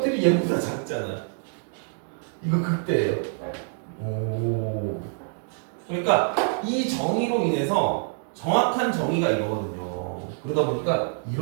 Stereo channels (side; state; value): left; silent; digital silence